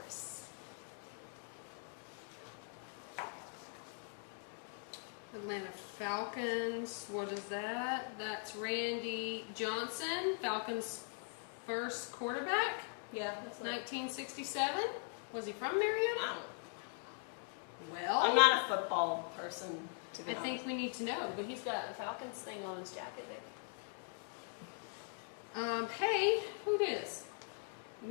Atlanta Falcons, what is that? That's Randy Johnson, Falcons' first quarterback, Yeah, that's 1967. Was he from Marietta? Well, I'm not a football person, to be I honest. think we need to know. But he's got a Falcons thing on his jacket. Hey, who this?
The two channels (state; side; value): silent; right; 50 dB below the other